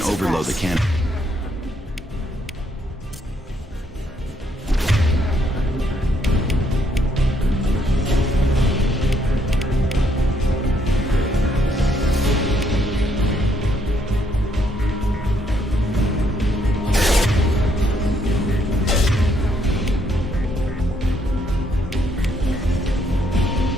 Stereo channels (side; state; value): both; normal; correlation 0.71